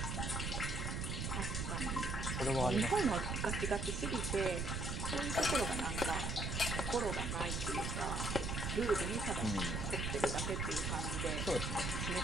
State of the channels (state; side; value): noise; right; rumble, 1 dB below the sound